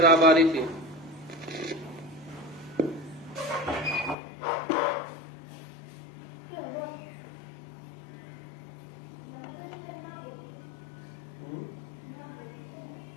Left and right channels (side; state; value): right; drops out; at 4.2 s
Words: आ रही थी।